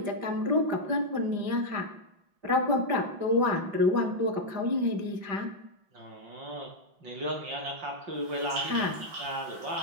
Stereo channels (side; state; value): left; late; 5.1 ms